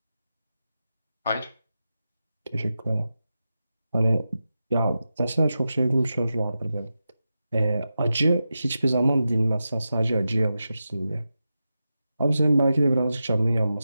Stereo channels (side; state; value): both; inverted; correlation -0.91